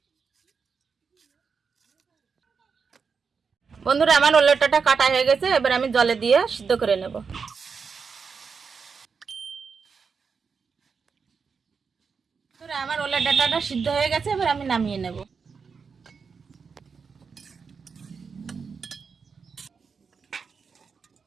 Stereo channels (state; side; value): quieter; left; 5.6 dB